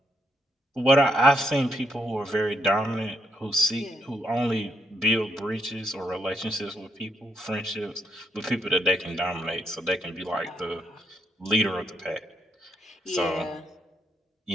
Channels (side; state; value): both; normal; correlation 0.77